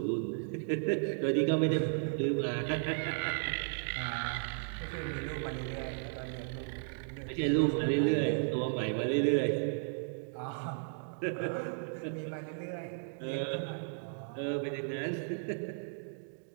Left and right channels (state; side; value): silent; left; digital silence